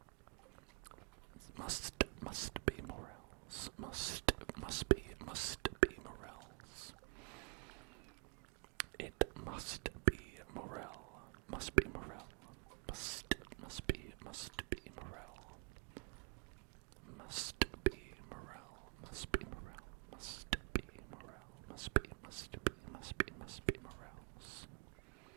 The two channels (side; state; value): left; quieter; 33.7 dB